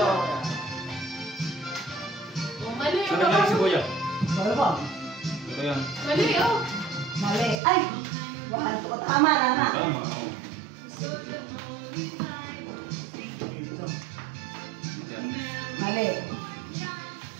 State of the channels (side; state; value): left; drops out; at 7.6 s